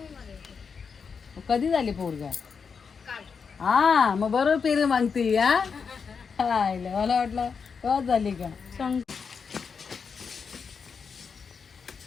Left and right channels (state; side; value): quieter; right; 5.8 dB